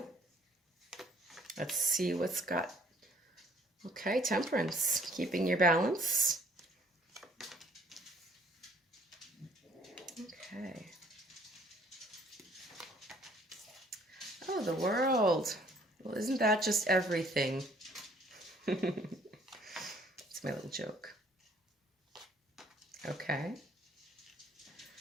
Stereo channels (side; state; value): both; normal; correlation 0.59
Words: Let's see what's got. Okay, Temperance, keeping your balance. Okay. Oh, the World. Well, isn't that just everything? It's my little joke. Okay.